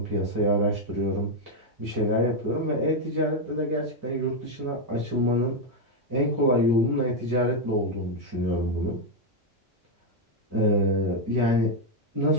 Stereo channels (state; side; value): normal; both; correlation 0.02